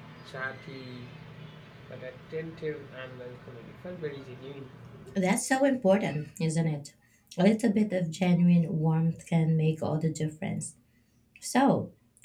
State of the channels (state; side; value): identical; both; correlation 1.00